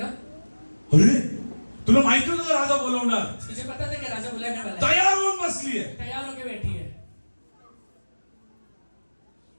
अरे तुला माहिती होतं राजा बोलवणार, तुझे पता था कि राजा बुलाने वाला है, तयार होऊन बसली आहे. तैयार होके बैठी है।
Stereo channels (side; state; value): both; inverted; correlation -1.00